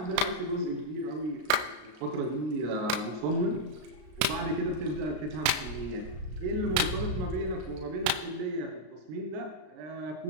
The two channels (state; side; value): late; left; 32 ms